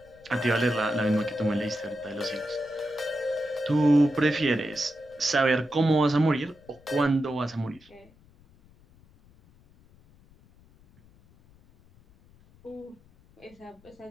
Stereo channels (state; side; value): noise; left; rumble, 28 dB below the sound